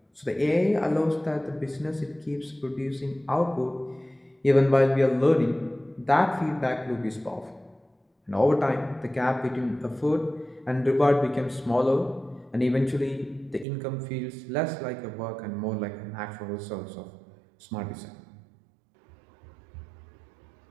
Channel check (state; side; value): drops out; left; at 13.7 s